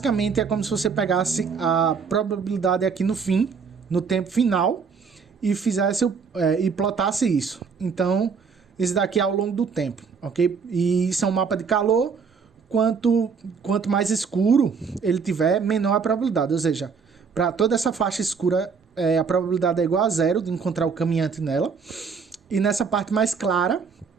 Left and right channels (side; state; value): left; quieter; 5.7 dB